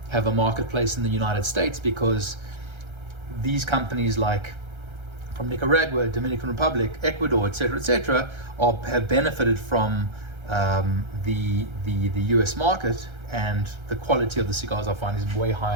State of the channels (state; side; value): late; left; 1.3 ms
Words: have a marketplace in the United States, because these companies like from Nicaragua, Dominican Republic, Ecuador, etc., have benefited from the US market, and the quality of the cigars I find is way